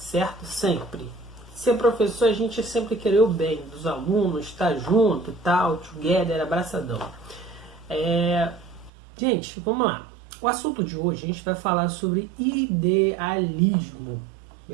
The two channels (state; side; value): drops out; left; at 8.9 s